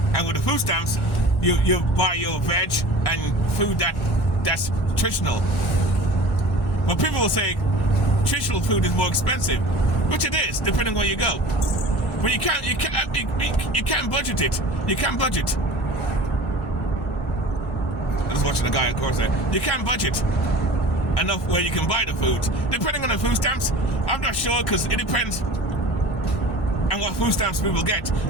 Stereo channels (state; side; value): normal; both; correlation 0.40